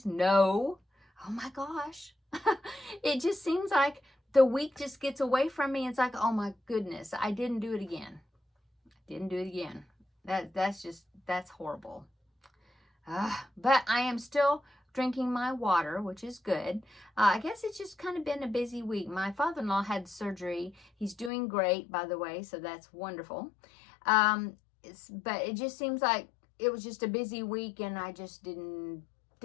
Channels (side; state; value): right; drops out; at 21.3 s